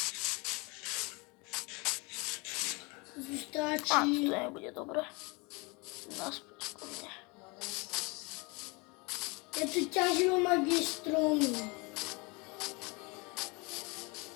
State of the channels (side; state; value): right; quieter; 28.0 dB